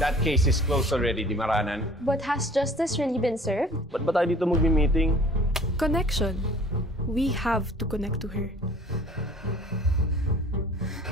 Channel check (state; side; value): normal; both; correlation 0.48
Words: case is closed already, di Maranan? But has justice really been served? Ba't ba tayo dito magmi-meeting? Connection. We have to connect to her.